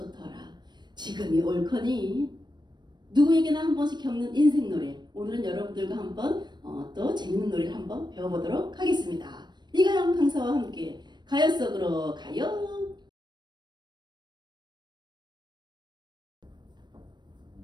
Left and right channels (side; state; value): left; late; 0.21 ms